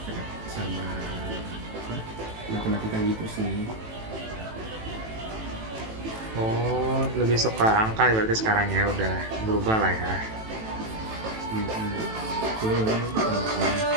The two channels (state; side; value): late; left; 18 ms